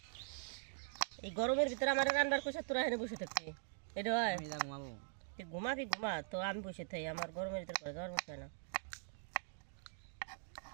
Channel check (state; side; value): silent; left; digital silence